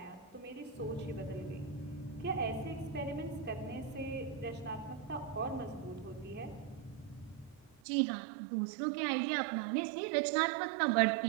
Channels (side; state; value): left; drops out; at 7.8 s